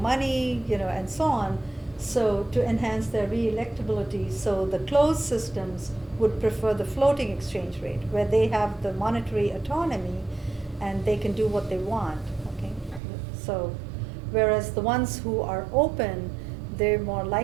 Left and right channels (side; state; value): left; drops out; at 13.0 s